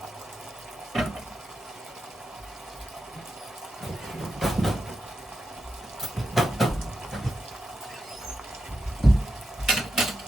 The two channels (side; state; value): both; normal; correlation 0.87